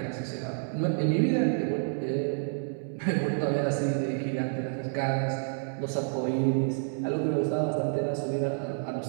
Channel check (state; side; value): silent; left; digital silence